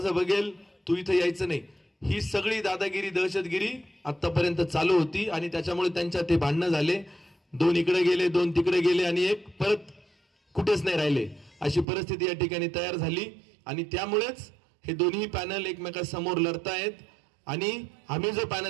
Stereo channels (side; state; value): left; drops out; at 11.9 s